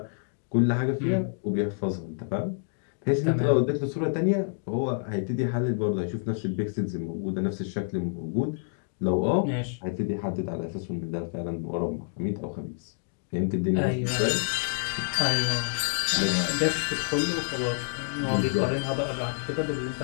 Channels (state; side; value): silent; right; digital silence